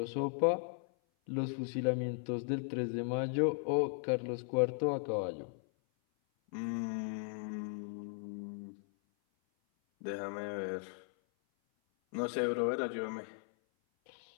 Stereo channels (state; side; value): silent; right; 53 dB below the other